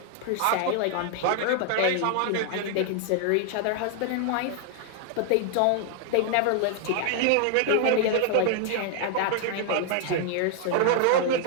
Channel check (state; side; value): different; both; correlation 0.00